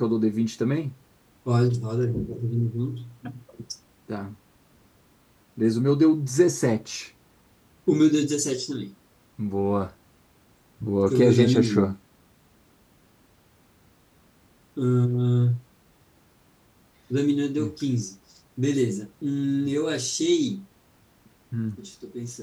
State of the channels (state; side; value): identical; both; correlation 1.00